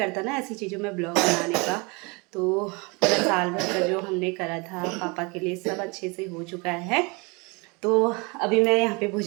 ना ऐसी चीज़ों में ब्लॉग बनाने का। तो पूरा साल भर का जो हमने करा था पापा के लिए सब अच्छे से हो चुका है। तो अभी मैं यहाँ पे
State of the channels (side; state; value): left; quieter; 28.5 dB